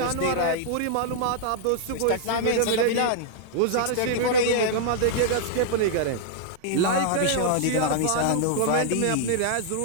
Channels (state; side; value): different; both; correlation -0.01